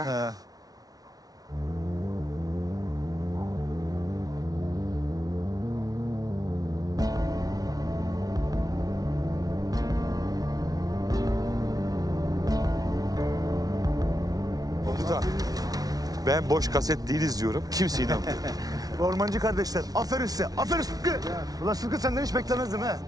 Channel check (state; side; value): late; left; 0.18 ms